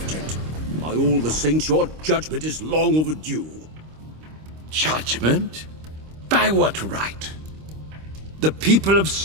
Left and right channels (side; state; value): left; late; 26 ms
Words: gent. By all the saints, your judgment is long overdue. Judgment? By what right? The people of